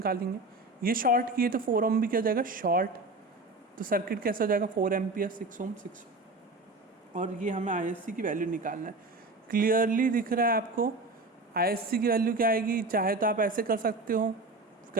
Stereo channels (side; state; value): left; quieter; 3.1 dB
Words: ये शॉर्ट किए तो 4 ओम भी क्या हो जाएगा, शॉर्ट, तो सर्किट कैसा हो जाएगा, 4 एम्पियर, 6 ओम, 6। और ये हमें ISC की वैल्यू निकालना है। क्लियरली दिख रहा है आपको ISC की वैल्यू क्या आएगी, चाहे तो आप ऐसे कर सकते हो